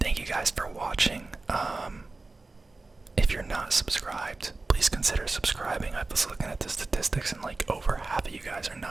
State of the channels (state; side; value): quieter; left; 3.4 dB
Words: you guys for watching. If you're not subscribed, please consider subscribing. I was looking at the statistics and like over half of you guys are